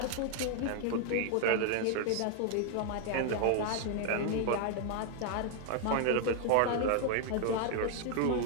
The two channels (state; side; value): different; both; correlation 0.00